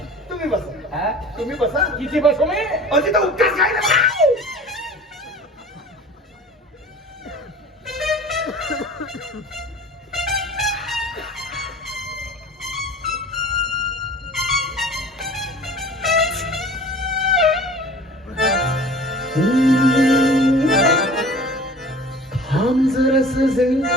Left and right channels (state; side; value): normal; both; correlation 0.43